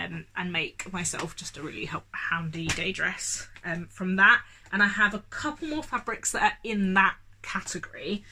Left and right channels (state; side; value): identical; both; correlation 1.00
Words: make myself just a really handy day dress from that. And I have a couple more fabrics that are in that category.